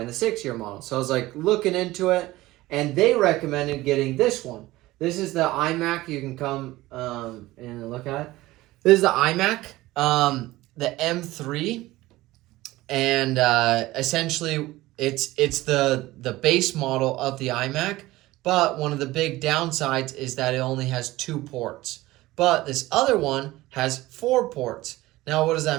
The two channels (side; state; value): left; quieter; 18.0 dB